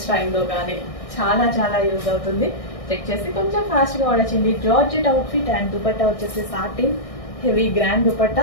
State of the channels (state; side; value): late; right; 1.6 ms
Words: టైంలో కానీ చాలా చాలా యూజ్ అవుతుంది. చెక్ చేసి కొంచెం ఫాస్ట్ గా ఆర్డర్ చేయండి. జార్జెట్ అవుట్ఫిట్ అండ్ దుపట్టా వచ్చేసి satin heavy grand